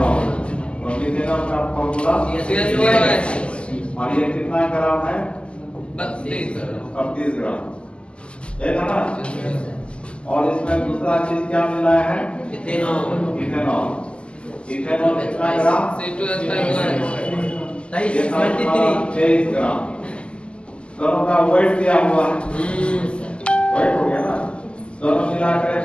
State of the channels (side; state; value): right; late; 0.053 ms